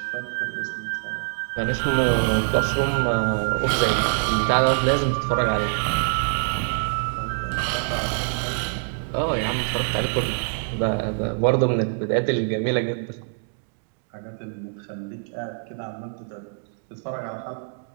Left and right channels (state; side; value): silent; left; digital silence